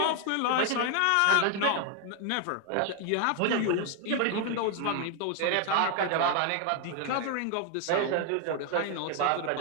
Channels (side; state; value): both; different; correlation 0.00